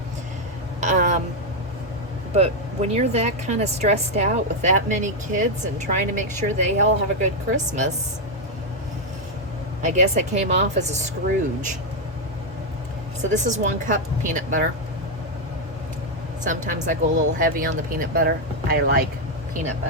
But when you're that kind of stressed out with that many kids and trying to make sure they all have a good Christmas, I guess I came off as a Scrooge. So this is 1 cup peanut butter. Sometimes I go a little heavy on the peanut butter. I like peanut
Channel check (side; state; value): both; normal; correlation 0.02